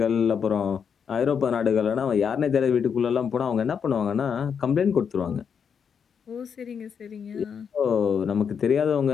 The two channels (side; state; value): right; quieter; 7.0 dB